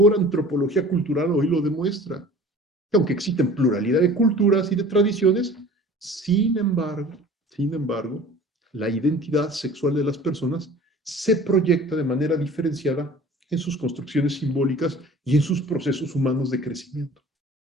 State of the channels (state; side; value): normal; both; correlation 0.45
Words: antropología cultural hoy lo demuestra. Aunque existen pluralidad de culturas y de tradiciones, sin embargo, la identidad sexual de las personas se proyecta de manera diferenciada en sus construcciones simbólicas y en sus procesos humanos de crecimiento.